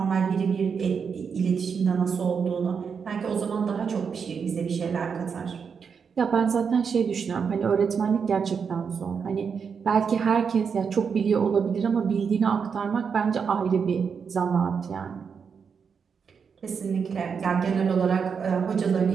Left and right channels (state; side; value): quieter; left; 6.3 dB